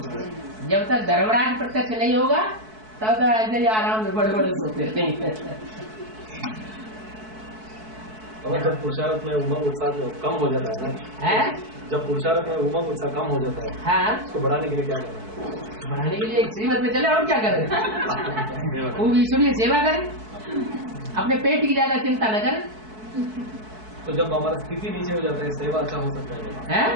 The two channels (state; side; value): late; left; 4.6 ms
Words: जब तक धर्मराज प्रत्यक्ष नहीं होगा तब तक ऐसे ही आराम से बड़े बड़े सोते रहेंगे। और जब पुरुषार्थ में उमंग उत्साह कम हो जाता है ना, जब पुरुषार्थ में उमंग उत्साह कम हो जाता है, हाँ, उसको बढ़ाने के लिए क्या करना है? बढ़ाने के लिए एक श्रीमत में चले और क्या करें? खूब ईश्वरीय सेवा करें, अपने पेट की ज्यादा चिंता न करें। तो जब हमारा स्थिति नीचे हो जाता है सेवा अच्छा हो सकता है?